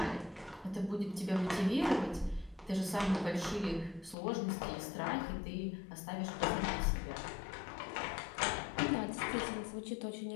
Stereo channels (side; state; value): right; drops out; at 4.2 s